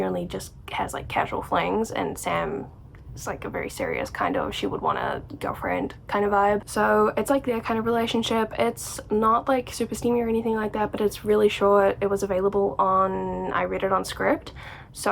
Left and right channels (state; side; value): identical; both; correlation 1.00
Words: only just has like casual flings, and Sam is like a very serious kind of, she would want a girlfriend kind of vibe. So it's like their kind of relationship. It's not like super steamy or anything like that, but it's really short. It was available on, I read it on Scribd,